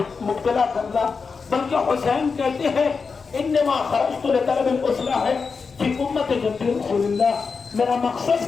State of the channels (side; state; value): right; quieter; 5.1 dB